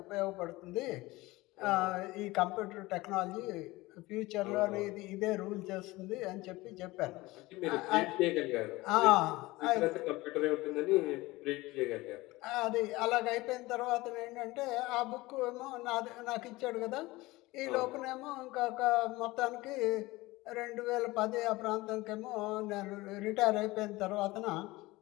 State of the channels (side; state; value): right; quieter; 20.3 dB